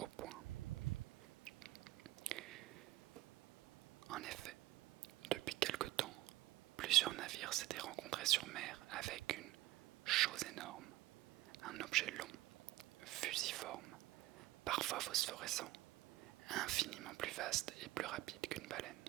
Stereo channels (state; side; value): quieter; left; 16.6 dB